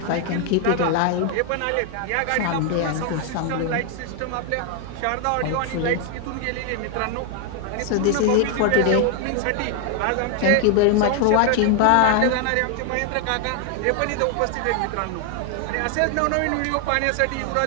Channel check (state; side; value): different; both; correlation 0.00